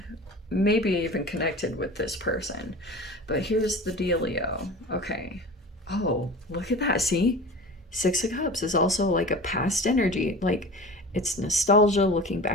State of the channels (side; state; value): both; normal; correlation 0.36